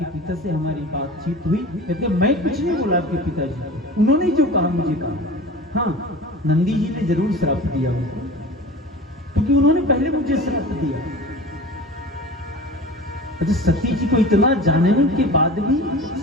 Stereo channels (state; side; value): normal; both; correlation 0.36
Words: पिता से हमारी बातचीत हुई। कहते मैं कुछ नहीं बोला आपके पिताजी को, उन्होंने जो कहा मुझे कहा। हाँ नंदी जी ने जरूर श्राप दिया उनको, क्योंकि उन्होंने पहले मुझे श्राप दिया। अच्छा सती जी को इतना जानने के बाद भी